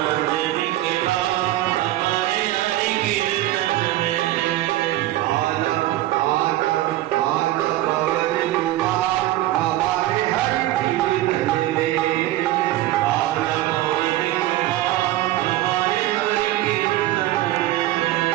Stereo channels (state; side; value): quieter; left; 15.5 dB